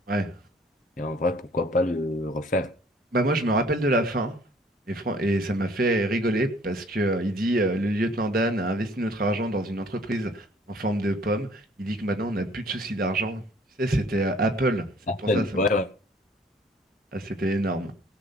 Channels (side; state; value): both; normal; correlation 0.57